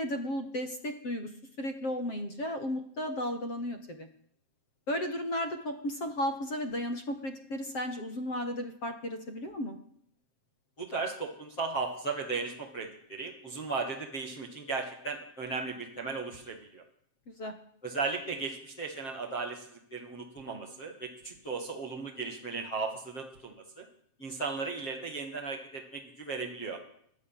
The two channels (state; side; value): late; right; 7.5 ms